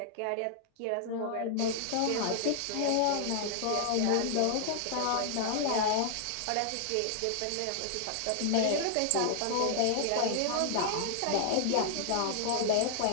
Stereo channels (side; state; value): both; different; correlation 0.00